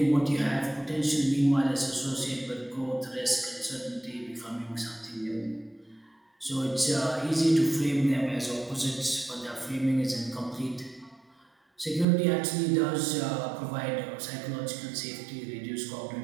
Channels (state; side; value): drops out; left; at 12.1 s